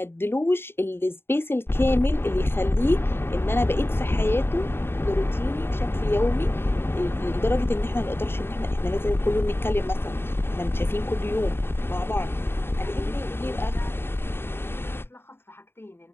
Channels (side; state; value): right; late; 0.11 ms